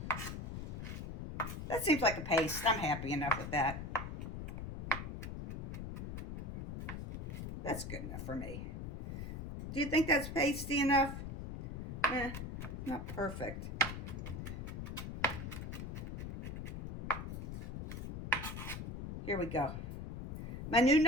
That seems like a paste. I'm happy enough with that. That's good enough for me. Do you think that's pasty enough? Not perfect. Here we go. My new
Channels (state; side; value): noise; left; rumble, 6 dB below the sound